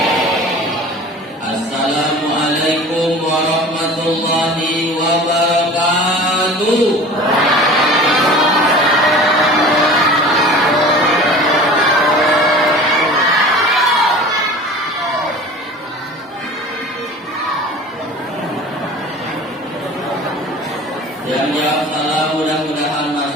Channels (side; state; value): both; normal; correlation 0.40